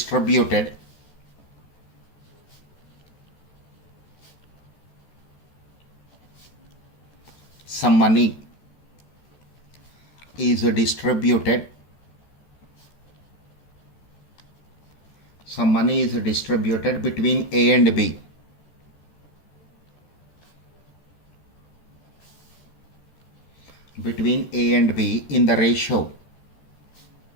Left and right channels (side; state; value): right; late; 14 ms